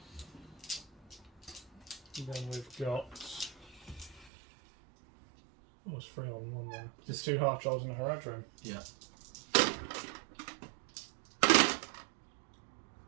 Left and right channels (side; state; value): left; drops out; at 4.3 s